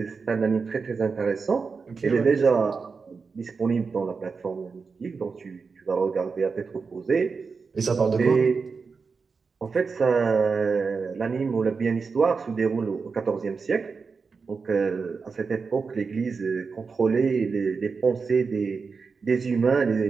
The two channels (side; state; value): left; quieter; 4.9 dB